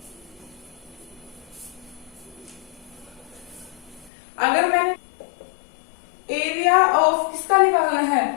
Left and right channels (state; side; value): drops out; right; at 4.1 s